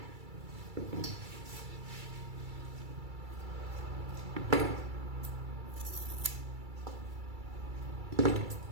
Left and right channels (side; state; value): left; late; 2.3 ms